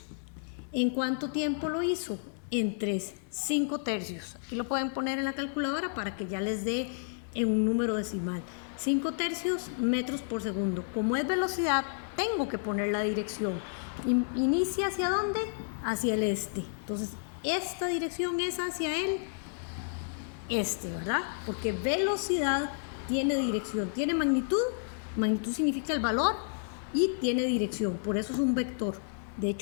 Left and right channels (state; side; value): silent; right; digital silence